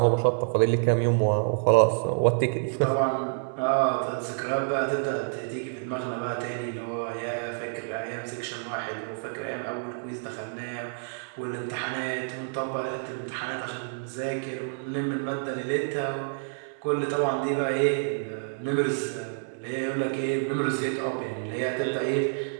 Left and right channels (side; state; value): left; silent; digital silence